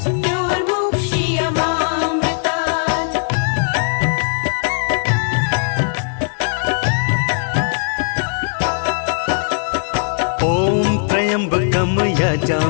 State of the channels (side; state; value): right; silent; digital silence